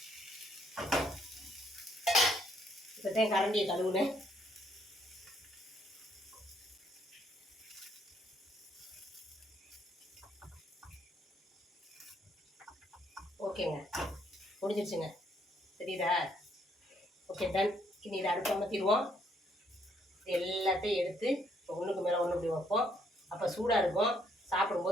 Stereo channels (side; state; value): both; normal; correlation 0.70